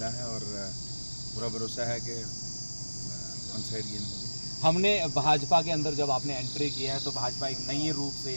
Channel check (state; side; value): inverted; both; correlation -1.00